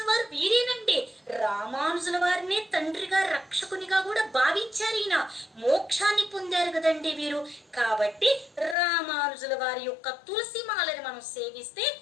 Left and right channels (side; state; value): right; drops out; at 8.8 s